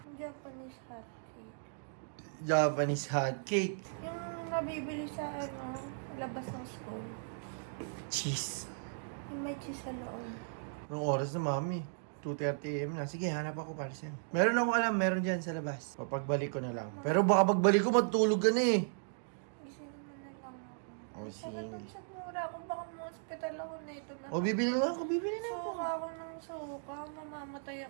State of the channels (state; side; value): silent; left; digital silence